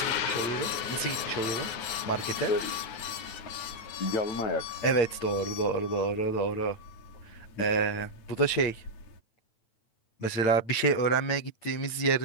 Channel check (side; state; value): right; late; 9.0 ms